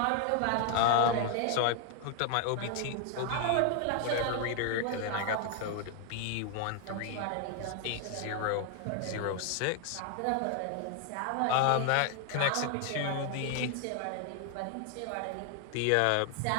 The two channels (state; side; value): different; both; correlation 0.01